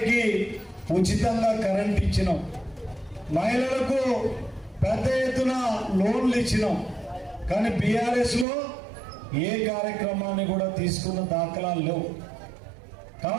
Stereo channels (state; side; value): drops out; left; at 8.5 s